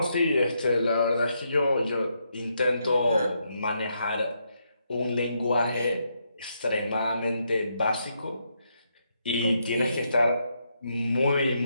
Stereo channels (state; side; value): inverted; both; correlation -0.79